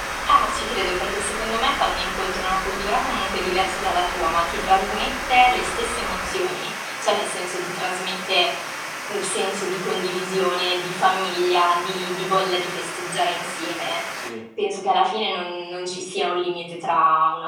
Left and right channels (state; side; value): identical; both; correlation 1.00